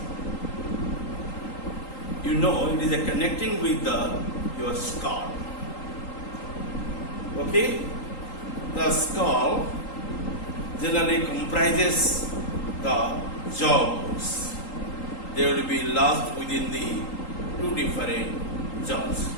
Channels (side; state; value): right; late; 3.8 ms